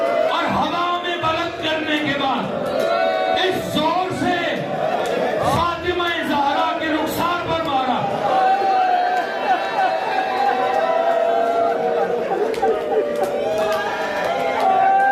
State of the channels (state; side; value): identical; both; correlation 1.00